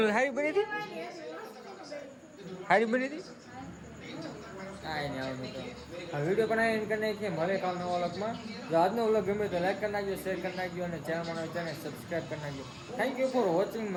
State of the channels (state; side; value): identical; both; correlation 1.00